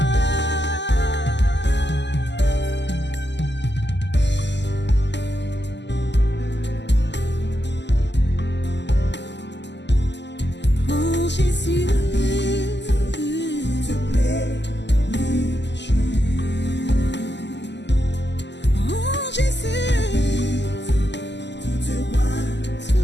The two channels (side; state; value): right; late; 0.51 ms